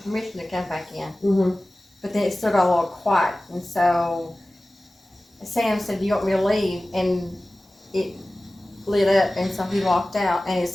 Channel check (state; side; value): normal; both; correlation 0.97